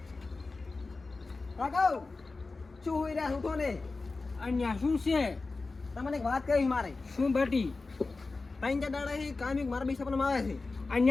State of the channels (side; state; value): right; quieter; 3.7 dB